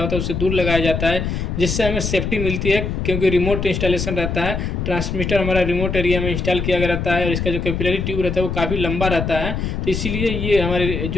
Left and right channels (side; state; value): left; noise; rumble, 2 dB below the sound